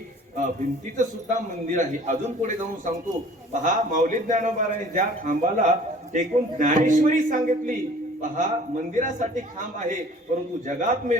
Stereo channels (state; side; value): normal; both; correlation 0.50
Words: भिंतीचं सुद्धा मंदिर आहे. अजून पुढे जाऊन सांगतो पहा माऊली ज्ञानोबारांनी ज्या खांबाला टेकून ज्ञानेश्वरी सांगितली. पहा मंदिरासाठी खांब आहे, परंतु जगात मे